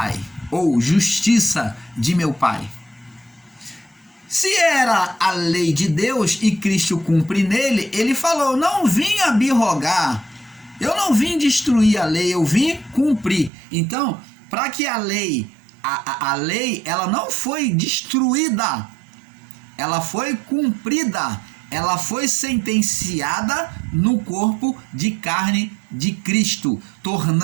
ou justiça de meu Pai. Se era a lei de Deus e Cristo cumpre nele, ele falou, não vim abrogar, eu não vim destruir a lei, eu vim cumprir. Então, para que a lei, ela não foi destruída, ela foi cumprida, ela foi sentenciada no corpo de carne de Cristo,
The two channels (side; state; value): left; drops out; at 13.5 s